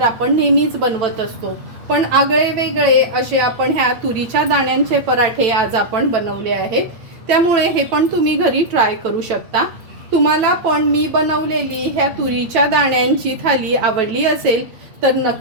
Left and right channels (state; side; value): late; left; 9.0 ms